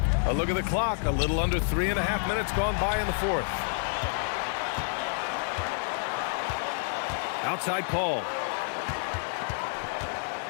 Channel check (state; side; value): silent; right; digital silence